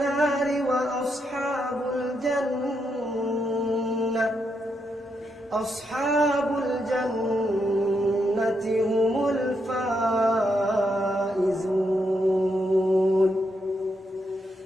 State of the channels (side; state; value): both; normal; correlation 0.81